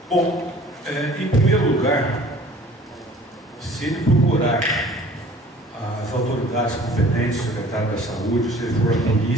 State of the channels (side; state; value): both; normal; correlation 0.49